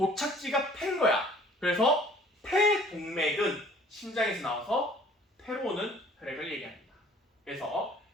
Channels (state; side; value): normal; both; correlation 0.53